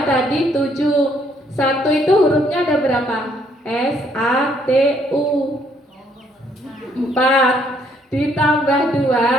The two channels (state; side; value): normal; both; correlation 0.67